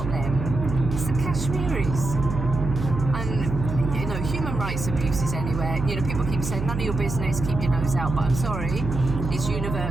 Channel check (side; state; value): right; noise; hum, 5 dB below the sound